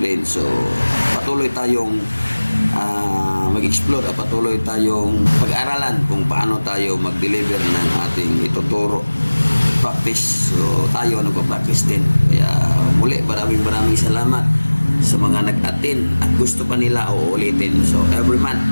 so patuloy tayong mag-explore at patuloy tayong pag-aralan kung paano tayo mag-deliver ng ating ituturo, practice. So tayo nagpa-practice din. Kaya muli maraming salamat sa mga nag-attend at gusto pa nila uulitin. So every month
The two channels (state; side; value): inverted; both; correlation -1.00